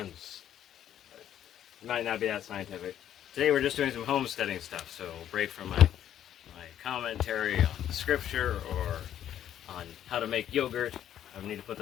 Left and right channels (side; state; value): right; quieter; 10.7 dB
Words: It might not be that scientific. Today we're just doing some homesteading stuff, so we'll break from my commentary on scripture or on how to make yogurt. I need to put